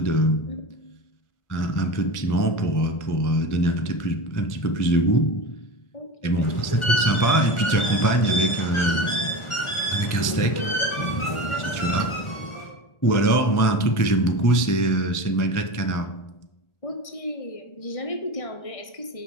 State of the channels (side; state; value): right; late; 1.4 ms